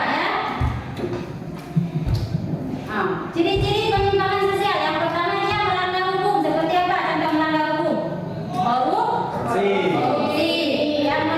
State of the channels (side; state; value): both; identical; correlation 1.00